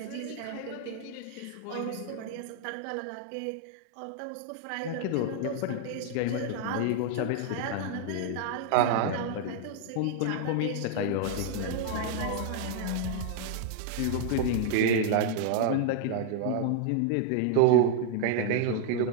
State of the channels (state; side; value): different; both; correlation 0.00